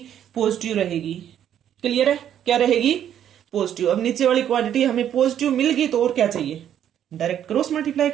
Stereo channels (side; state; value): left; quieter; 10.1 dB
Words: पॉजिटिव रहेगी। क्लियर है, क्या रहेगी, पॉजिटिव। अब नीचे वाली क्वांटिटी हमें पॉजिटिव मिल गई तो और क्या चाहिए, डायरेक्ट क्रॉस मल्टीप्लाई